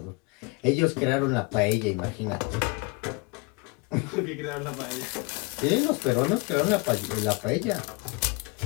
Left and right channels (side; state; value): right; quieter; 28.1 dB